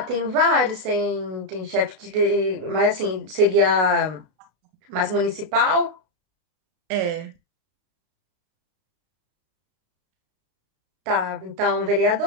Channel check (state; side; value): late; left; 32 ms